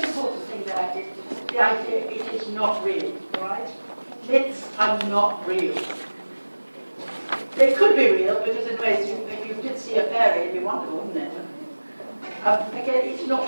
important thing that I did, the idea it is not real, right? Myths are not real. They could be real because in ways, if you did see a fairy, it'd be wonderful, wouldn't it? Again, it's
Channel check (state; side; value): inverted; both; correlation -1.00